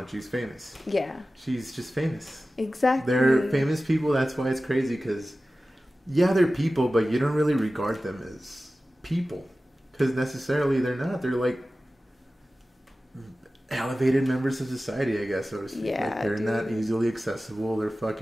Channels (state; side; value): normal; both; correlation 0.95